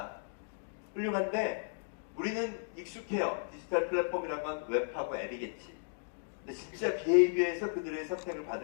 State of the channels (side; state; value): right; silent; digital silence